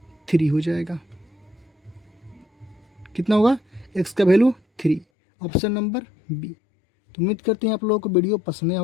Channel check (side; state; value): right; drops out; at 5.1 s